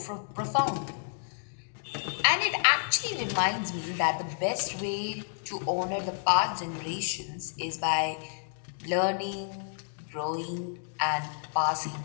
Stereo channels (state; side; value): silent; right; digital silence